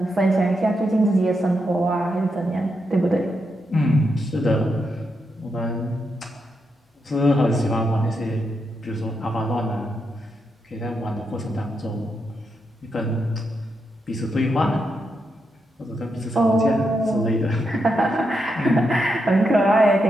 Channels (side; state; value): both; normal; correlation 0.83